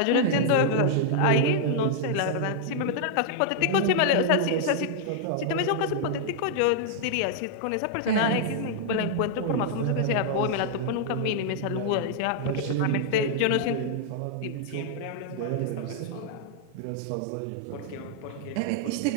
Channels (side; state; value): both; different; correlation -0.01